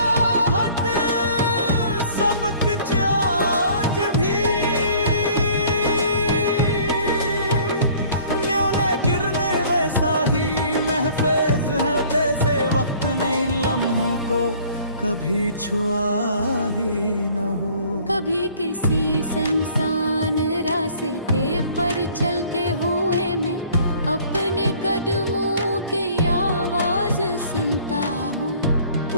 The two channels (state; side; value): inverted; both; correlation -0.53